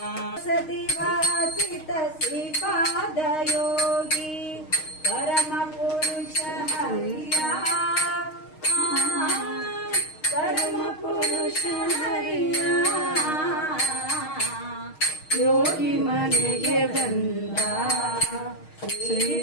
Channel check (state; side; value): late; right; 6.4 ms